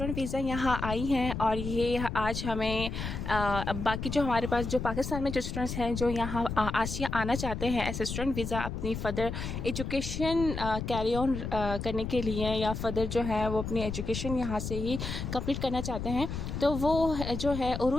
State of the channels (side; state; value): left; noise; rumble, 5 dB below the sound